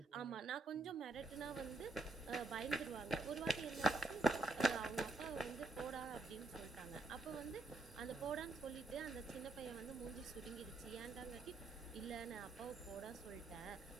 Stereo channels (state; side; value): quieter; left; 3.3 dB